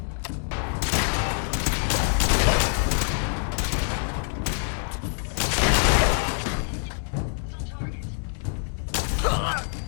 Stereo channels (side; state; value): right; silent; 61 dB below the other